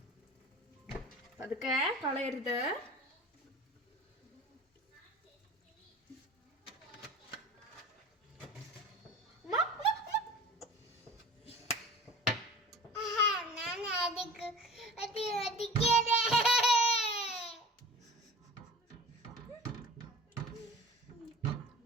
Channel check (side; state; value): both; normal; correlation 0.39